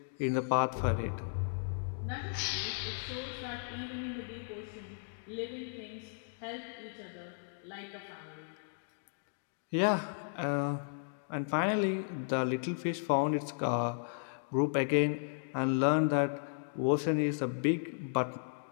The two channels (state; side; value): silent; right; digital silence